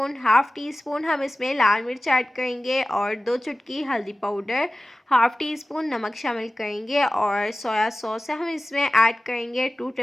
हम इसमें लाल मिर्च ऐड करेंगे और 2 चुटकी हल्दी पाउडर, हाफ़ टी स्पून नमक शामिल करेंगे और सोया सॉस है हम इसमें ऐड करेंगे 2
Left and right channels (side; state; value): both; normal; correlation 0.96